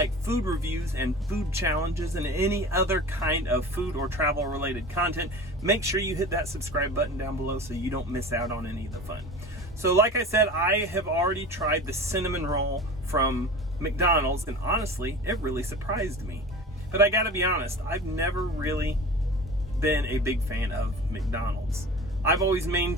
food reviews and food challenges and any other kind of food or travel related content, make sure you hit that subscribe button down below so you don't miss out on any of the fun. So like I said, I have already tried the cinnamon roll from McDonald's, and honestly, it really surprised me. But I gotta be honest, I've never really been a big fan of McDonald's. I've always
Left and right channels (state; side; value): normal; both; correlation 0.36